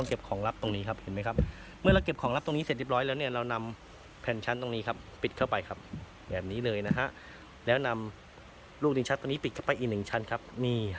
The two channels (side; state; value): both; identical; correlation 1.00